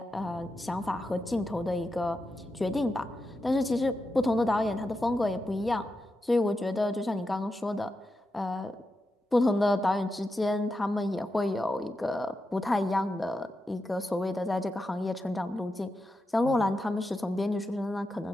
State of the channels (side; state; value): both; normal; correlation 0.88